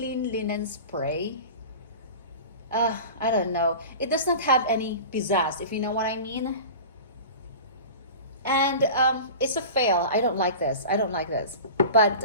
linen spray. I don't know. It does not have any pizzazz, if you know what I mean. And it's a fail. I don't like this. But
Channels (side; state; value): both; inverted; correlation -0.35